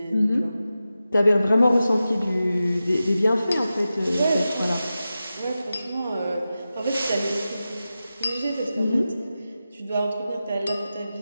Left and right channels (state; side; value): inverted; both; correlation -0.93